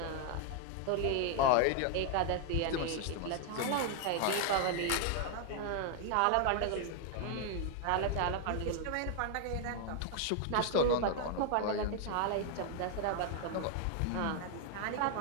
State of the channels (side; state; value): both; different; correlation 0.00